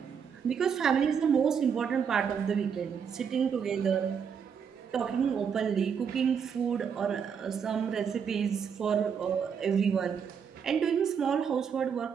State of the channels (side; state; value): left; quieter; 7.0 dB